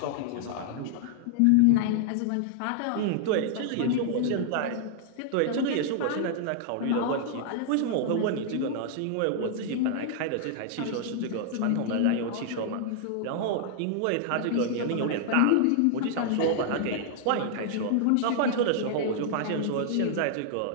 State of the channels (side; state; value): both; different; correlation -0.01